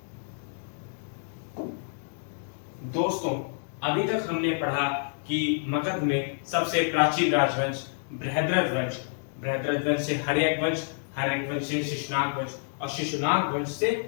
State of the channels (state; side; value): silent; right; digital silence